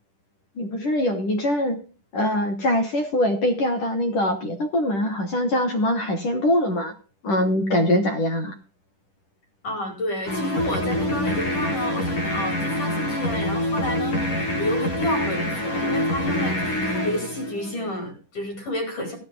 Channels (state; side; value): late; right; 10 ms